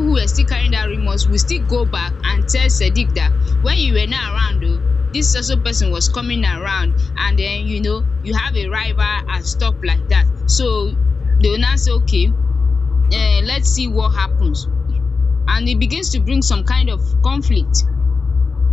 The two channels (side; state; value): right; quieter; 4.6 dB